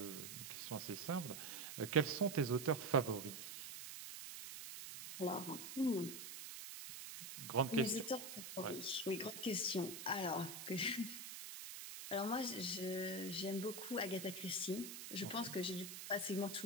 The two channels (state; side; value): noise; right; hiss, 8 dB below the sound